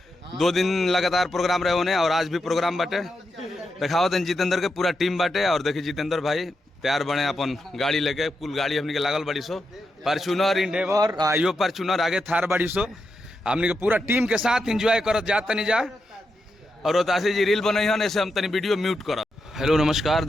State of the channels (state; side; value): normal; both; correlation 0.86